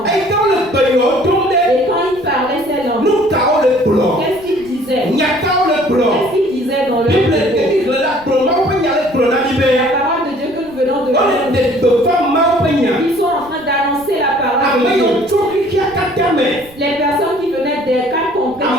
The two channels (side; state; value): right; noise; rumble, 25 dB below the sound